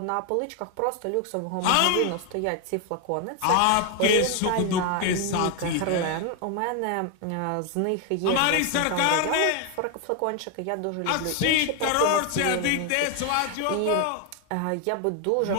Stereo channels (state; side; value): different; both; correlation 0.01